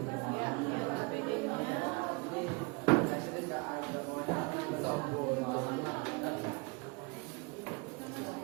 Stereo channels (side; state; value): left; quieter; 29.7 dB